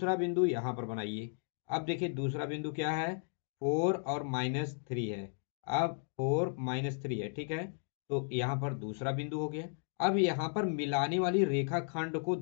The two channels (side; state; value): right; silent; 55 dB below the other